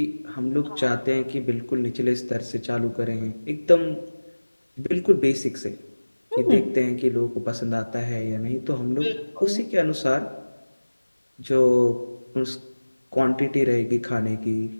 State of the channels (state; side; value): inverted; both; correlation -1.00